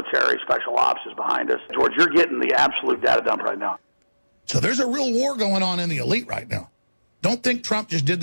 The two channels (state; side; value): inverted; both; correlation -1.00